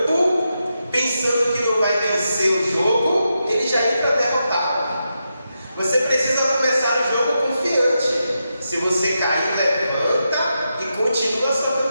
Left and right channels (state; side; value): inverted; both; correlation -0.86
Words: pensando que não vai vencer o jogo, ele já entra derrotado. Você precisa começar o jogo confiante. Se você cair, levanta e continua a sua